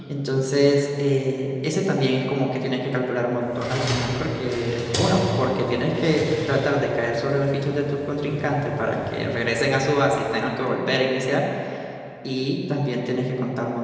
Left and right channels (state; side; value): identical; both; correlation 1.00